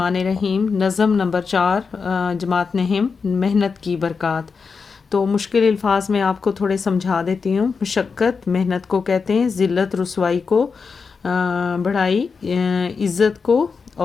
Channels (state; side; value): quieter; right; 5.2 dB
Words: الرحیم۔ نظم نمبر 4، جماعت نہم، محنت کی برکات۔ تو مشکل الفاظ میں آپ کو تھوڑے سمجھا دیتی ہوں۔ مشقت محنت کو کہتے ہیں، ذلت رسوائی کو، بڑائی عزت کو،